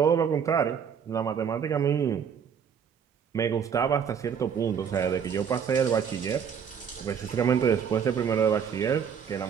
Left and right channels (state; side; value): quieter; left; 7.4 dB